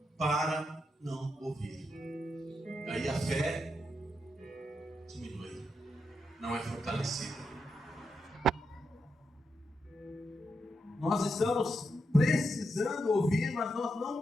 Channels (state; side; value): normal; both; correlation 0.84